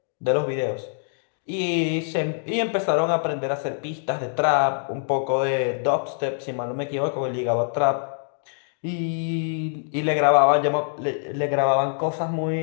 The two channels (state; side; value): silent; right; digital silence